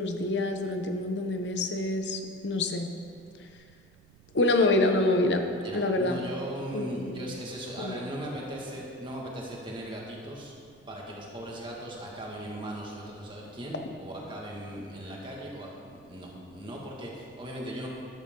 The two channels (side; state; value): right; noise; rumble, 26 dB below the sound